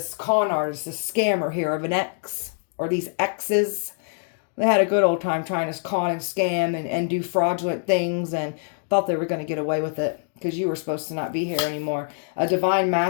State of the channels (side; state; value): right; silent; 62 dB below the other